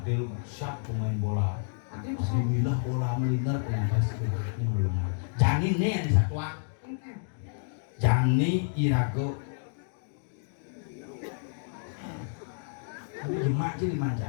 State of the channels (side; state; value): right; silent; digital silence